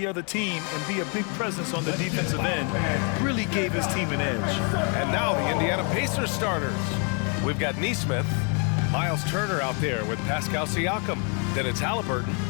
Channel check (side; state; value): right; quieter; 37.7 dB